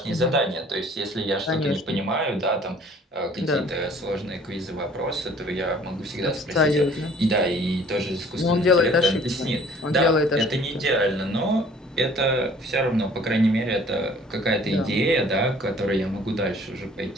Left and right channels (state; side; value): normal; both; correlation 0.53